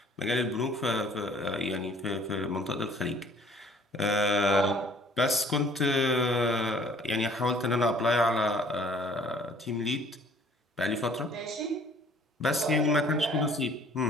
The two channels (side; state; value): both; normal; correlation 0.56